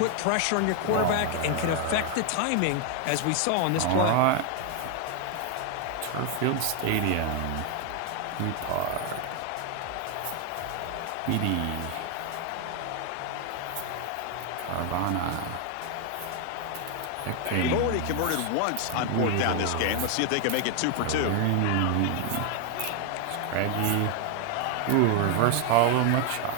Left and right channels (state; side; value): different; both; correlation 0.01